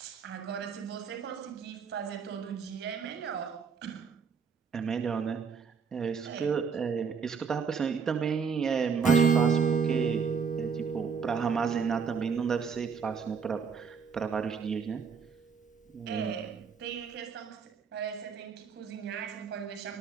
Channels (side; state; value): left; quieter; 6.0 dB